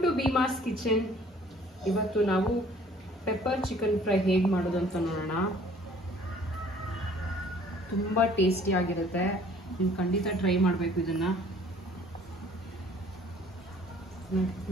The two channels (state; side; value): normal; both; correlation 0.55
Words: to Bheemas kitchen. ಇವತ್ತು ನಾವು pepper chicken fry ಹೇಗೆ ಮಾಡೋದು ಅಂತ ನೋಡೋಣ. ತುಂಬ ಟೇಸ್ಟಿ ಆಗಿರುತ್ತೆ, ನೀವು ಖಂಡಿತ ಟ್ರೈ ಮಾಡಬೇಕು ಇದನ್ನ.